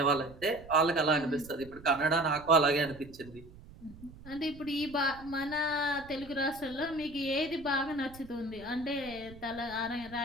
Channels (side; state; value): right; noise; rumble, 19 dB below the sound